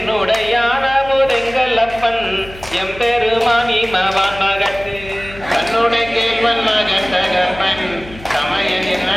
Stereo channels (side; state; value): left; noise; hum, 17 dB below the sound